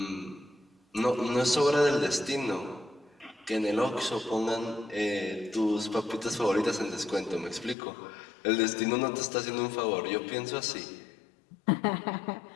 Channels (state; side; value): drops out; right; at 7.8 s